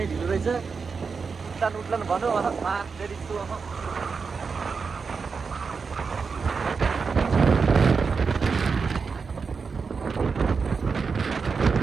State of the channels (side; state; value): left; quieter; 5.2 dB